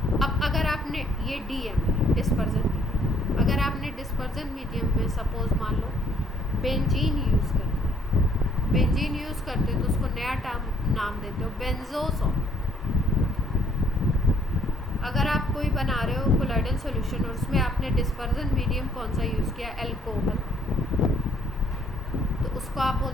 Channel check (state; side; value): normal; both; correlation 0.64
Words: अब अगर आपने ये DM है डिस्पर्सन मीडियम, अगर आपने डिस्पर्सन मीडियम में सपोज मान लो बेंजीन यूज़ करते हैं, बेंजीन यूज़ करते हो तो उसको नया नाम देते हो बेंजोसॉल। अगर आप कोई बना रहे हो कोलॉइडल सॉल्यूशन और उसमें आपने डिस्पर्सन मीडियम कौन सा यूज़ किया, एल्कोहल, तो उसको आप